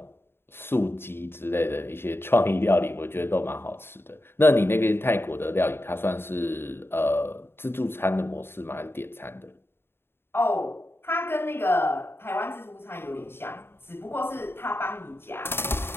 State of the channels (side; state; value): right; late; 0.11 ms